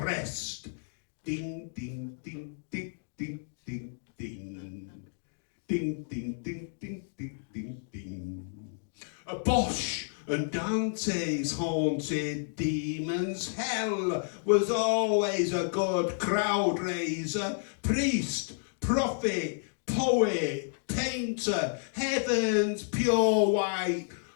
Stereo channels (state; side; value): silent; right; digital silence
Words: Ding, ding, ding, ding, ding, ding, ding. Ding, ding, ding, ding, ding, ding, ding. A Bosch and Dante's haunted demons. Hell was always a good crowd raiser. Priest, prophet, poet, painter, heaven's pure white